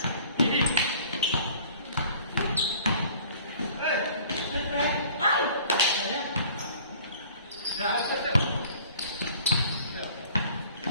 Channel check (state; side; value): inverted; both; correlation -0.50